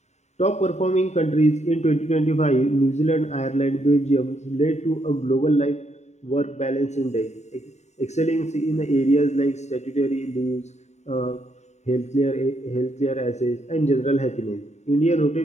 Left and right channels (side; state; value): right; late; 0.33 ms